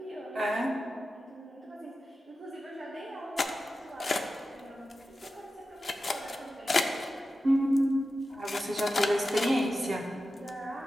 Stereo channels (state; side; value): normal; both; correlation 0.92